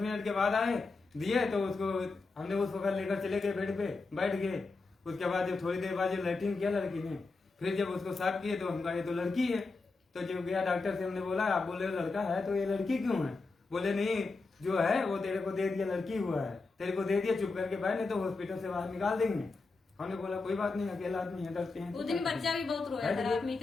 मिनट के बाद आए, दिए तो उसको हमने उसको घर लेकर चले गए, बेड पे बैठ गए। उसके बाद जब थोड़ी देर बाद जब लैट्रिन किया लड़की ने, फिर जब उसको साफ किए तो हम कहा ये तो लड़की है। तो जब गया डॉक्टर से, हमने बोला आप बोले लड़का है तो ये लड़की क्यों है? बोले नहीं, जो है वो तेरे को दे दिया, लड़की हुआ है, तेरे को दे दिया, चुप करके बैठ, नहीं तो हॉस्पिटल से बाहर निकाल देंगे। हमने बोला कोई बात नहीं, अकेला आदमी है, डरते हैं। उस दिन बच्चा भी बहुत रोया था, रात में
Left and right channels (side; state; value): right; quieter; 3.9 dB